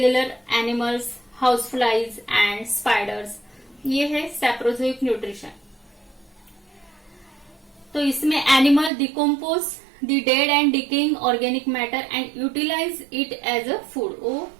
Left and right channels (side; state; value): left; drops out; at 8.9 s